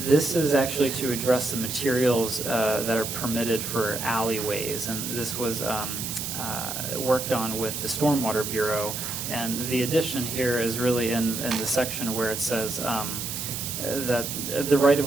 this is actually to address the materials that are permitted for alleyways, and this was worked on with the Stormwater Bureau. And the addition here is really in the section where it says that the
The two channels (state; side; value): noise; right; hiss, 5 dB below the sound